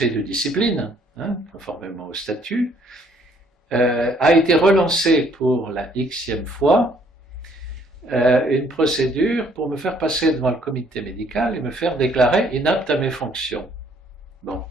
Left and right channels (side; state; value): both; normal; correlation 0.63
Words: de discipline, hein, conformément au statut, a été relancé pour la xème fois une procédure pour me faire passer devant le comité médical et me faire déclarer inapte à mes fonctions. Bon.